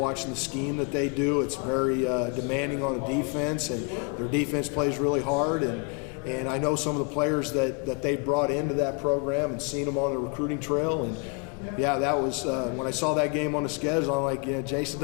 the scheme that they do. It's very demanding on the defense, and their defense plays really hard. And I know some of the players that they brought into that program and seen them on the recruiting trail. And yeah, that was when I saw that game on the schedule. I'm like, Jason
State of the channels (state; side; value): quieter; right; 32.7 dB